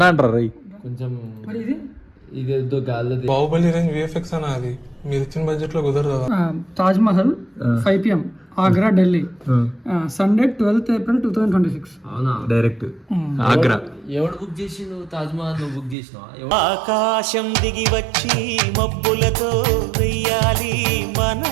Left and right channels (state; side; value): drops out; left; at 16.0 s